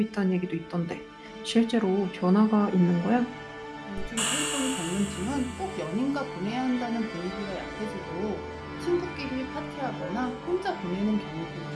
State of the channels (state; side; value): identical; both; correlation 1.00